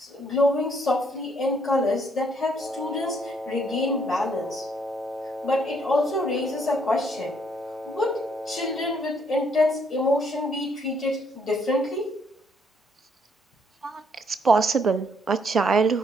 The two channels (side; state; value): both; normal; correlation 0.69